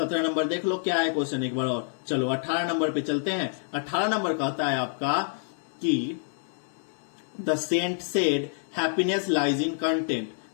नंबर देख लो क्या है क्वेश्चन एक बार और। चलो 18 नंबर पे चलते हैं। 18 नंबर कहता है आपका कि the saint said happiness lies in content.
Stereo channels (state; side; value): silent; right; digital silence